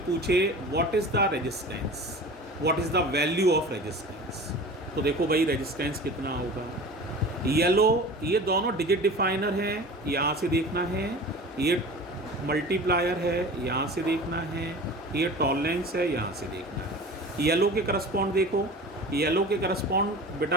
पूछे what is the resistance, what is the value of resistance, तो देखो भाई रेजिस्टेंस कितना होगा। येलो, ये दोनों डिजिट डिफाइनर हैं, यहाँ से देखना है। ये मल्टीप्लायर है, यहाँ से देखना है। ये टॉलरेंस है, यहाँ से देखना है। येलो के करस्पॉन्ड देखो, येलो के करस्पॉन्ड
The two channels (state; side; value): normal; both; correlation 0.37